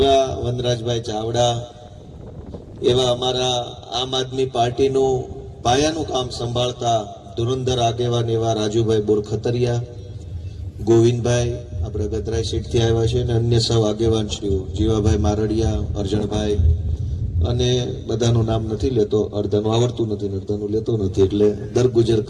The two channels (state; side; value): identical; both; correlation 1.00